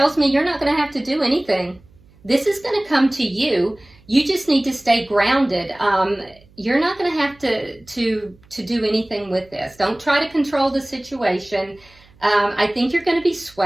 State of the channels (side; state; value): right; noise; hum, 28 dB below the sound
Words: me you're not going to have to do anything. This is going to come to you. You just need to stay grounded. You're not going to have to do anything with this. Don't try to control the situation. I think you're going to be